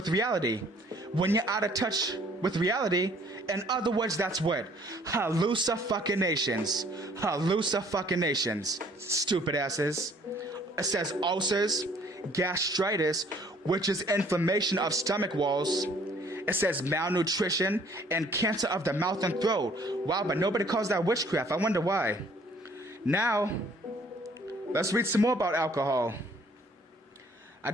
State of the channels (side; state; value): both; normal; correlation 0.59